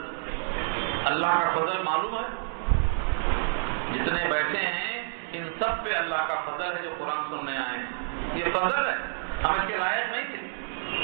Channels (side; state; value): left; silent; digital silence